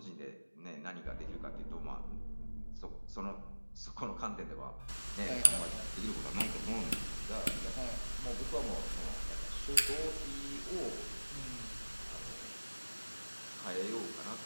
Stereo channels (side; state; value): both; inverted; correlation -1.00